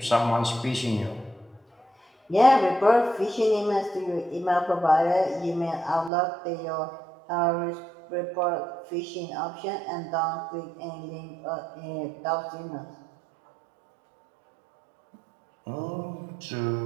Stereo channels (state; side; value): drops out; left; at 6.1 s